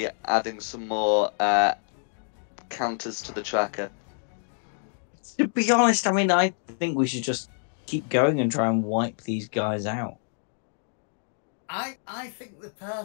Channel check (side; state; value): right; silent; digital silence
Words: adding some more counters to the tracker. To be honest, I mean, I think we should just keep going and try and wipe these guys out. I think the